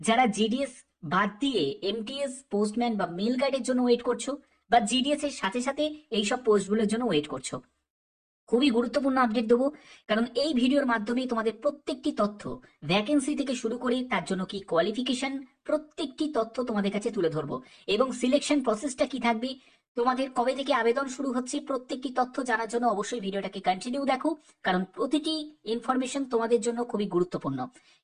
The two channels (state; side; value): identical; both; correlation 1.00